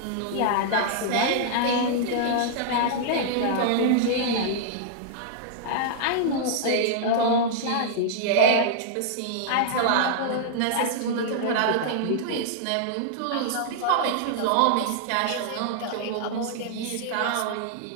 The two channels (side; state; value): both; different; correlation -0.01